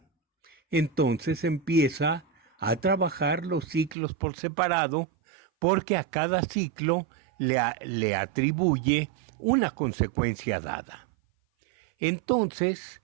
Entonces empieza a trabajar los ciclos por separado, porque a cada ciclo le atribuye una consecuencia dada. Entonces,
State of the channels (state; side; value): drops out; left; at 4.0 s